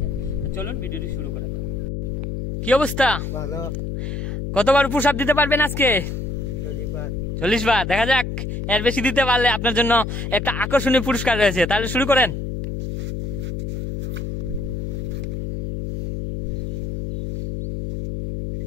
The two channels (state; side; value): noise; left; hum, 3 dB below the sound